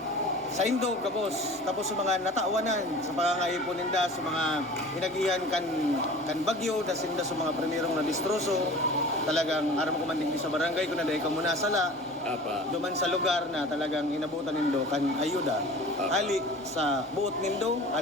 sa Indo, kapos. Tapos sa mga nataawanan, sa pangangayipon ninda, sa mga hinagihan kan bagyo, dasinda sa mga primerong na distroso. Talagang aram ko man din sa barangay, kung naday ka muna sala, Apa. duman sa lugar na talagang inabutan nindo kan ayuda. Ali sa buot nindo,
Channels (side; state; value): both; normal; correlation 0.41